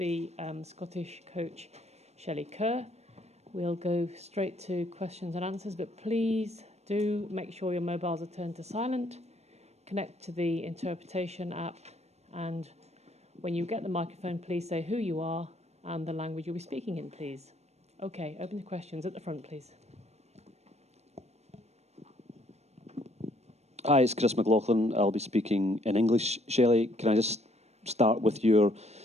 Scottish coach Shelley Kerr. We'll go straight to questions and answers, but please do make sure your mobiles are turned to silent. Connect to the interpretation app, and when you get the microphone, please say who you are and the language you'll be speaking in, please. Okay, open to questions at the front, please. Hi, it's Chris McLaughlin. I'll be speaking in English. Shelley, can I just start with your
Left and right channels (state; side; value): late; left; 0.31 ms